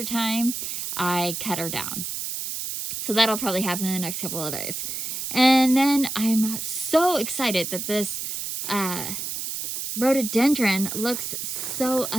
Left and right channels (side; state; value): right; noise; hiss, 4 dB below the sound